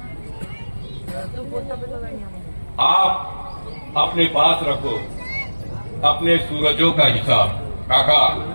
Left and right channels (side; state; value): both; inverted; correlation -1.00